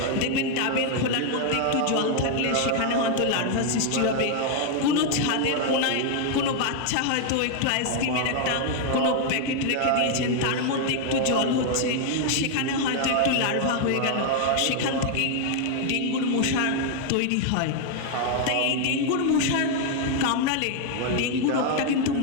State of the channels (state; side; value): different; both; correlation 0.00